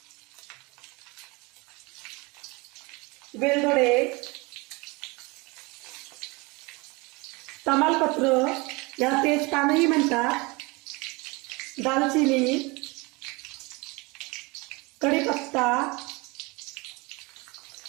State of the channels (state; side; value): quieter; left; 25.8 dB